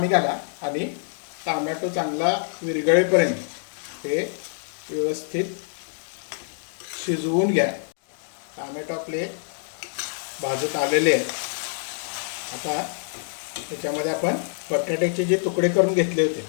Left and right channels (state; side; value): silent; right; 61 dB below the other